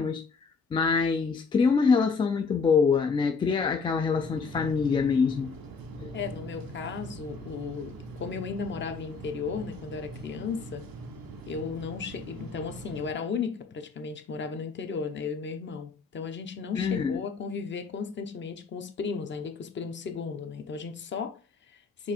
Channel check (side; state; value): right; quieter; 4.9 dB